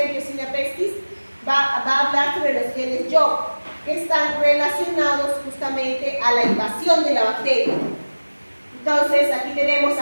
Yersinia Pestis, va a hablar sobre los genes Job, que están relacionados justamente a la invasión de la bacteria. Entonces, aquí tenemos se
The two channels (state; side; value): inverted; both; correlation -1.00